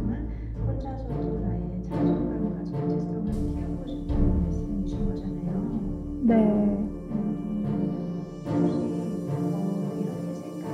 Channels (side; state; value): both; identical; correlation 1.00